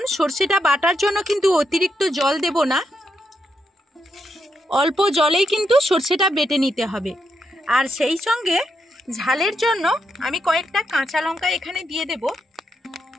সরষেটা বাটার জন্য কিন্তু অতিরিক্ত জল দেব না, অল্প জলেই কিন্তু সরষেটা বেটে নিতে হবে। আর সেই সঙ্গে ঝালের জন্য আমি কয়েকটা কাঁচা লঙ্কা এখানে দিয়ে দেব।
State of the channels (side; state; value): both; normal; correlation 0.81